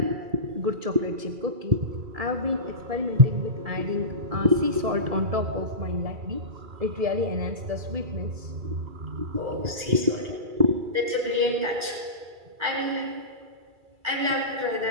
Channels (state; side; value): late; left; 2.3 ms